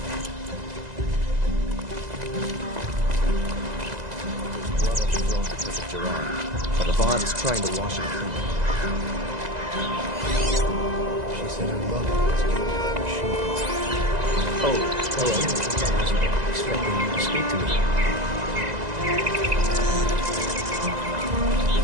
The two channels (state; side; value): late; left; 2.0 ms